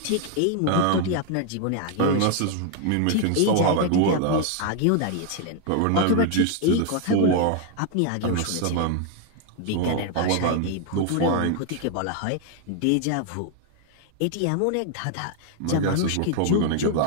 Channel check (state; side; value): different; both; correlation 0.00